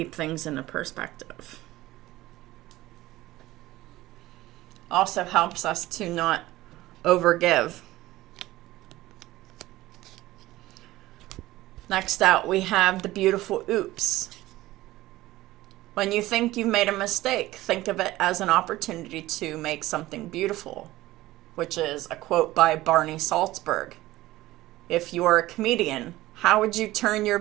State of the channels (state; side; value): quieter; left; 17.0 dB